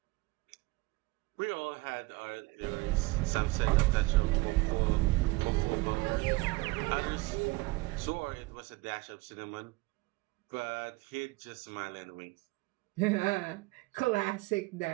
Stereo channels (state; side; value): quieter; left; 22.5 dB